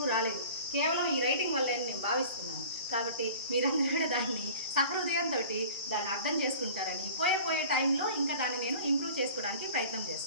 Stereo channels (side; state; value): both; inverted; correlation -0.43